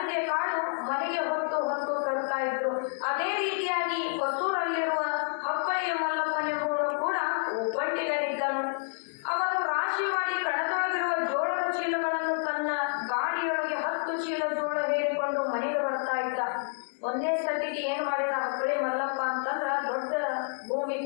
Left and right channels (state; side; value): silent; right; digital silence